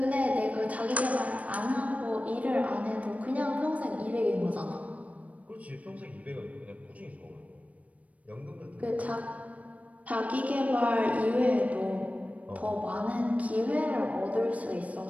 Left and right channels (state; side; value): late; left; 0.068 ms